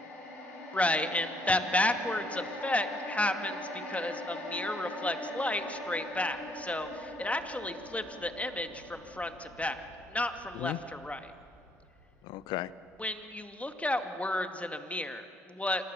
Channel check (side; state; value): both; normal; correlation 0.68